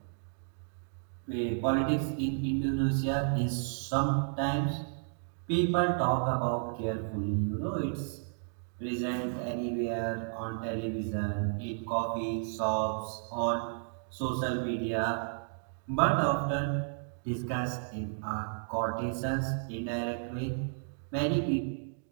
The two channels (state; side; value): silent; left; digital silence